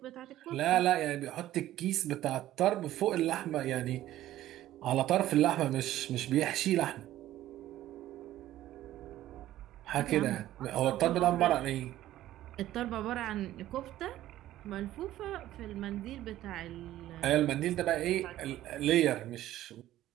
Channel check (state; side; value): quieter; left; 14.0 dB